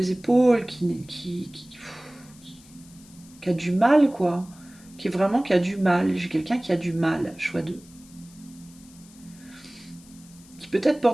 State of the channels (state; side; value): noise; left; hiss, 24 dB below the sound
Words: épaules, qui a du mal, quoi. Qui a du mal. J'ai quelqu'un qui a du mal, choix 2. Qui peut-être